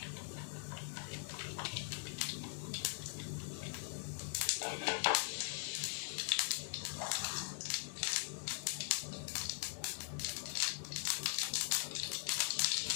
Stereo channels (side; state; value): right; silent; digital silence